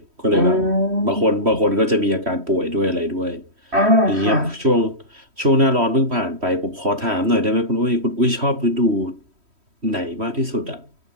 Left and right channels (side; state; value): left; late; 3.1 ms